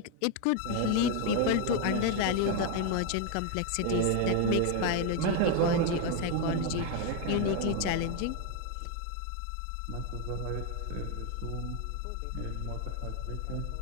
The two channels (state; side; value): different; both; correlation 0.01